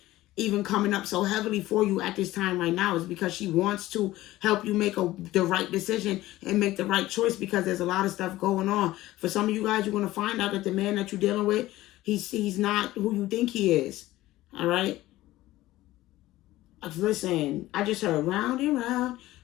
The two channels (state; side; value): quieter; right; 16.5 dB